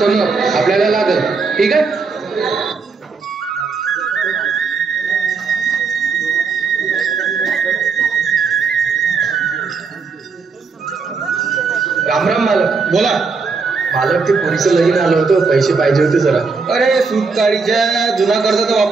आपल्याला लागल. ठीक आहे? राम राम मालक. बोला. मालक, ते पोरीचं लगीन आलं होतं, पैसे पाहिजे होते जरा. अरे सूतकाळीच्या जुना कर्ज तर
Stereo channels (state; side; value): quieter; left; 4.8 dB